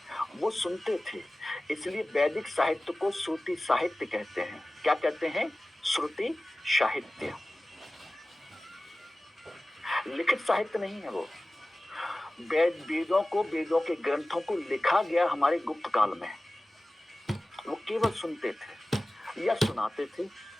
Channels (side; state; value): both; normal; correlation 0.97